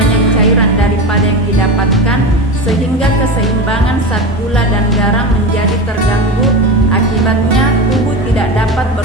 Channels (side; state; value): both; normal; correlation 0.24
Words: cairan daripada yang didapatkan, sehingga keseimbangan zat gula dan garam menjadi terganggu. Akibatnya tubuh tidak dapat